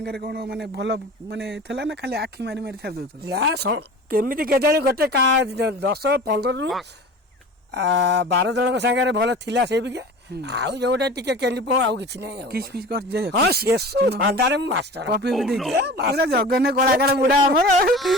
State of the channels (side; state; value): both; normal; correlation 0.37